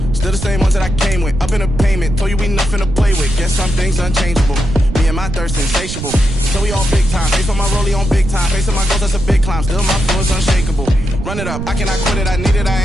still the same ones that I came with. Up in the payment, told you we nothing to play with. Guess some things unchangeable. Me and my thirst insatiable. So we all big time. Face on my rollie on big time. Facing my goals, that's a big climb. Still my flow is unshakable. Run it up, I cannot quit it. I need it,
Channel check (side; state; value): right; noise; rumble, 6 dB below the sound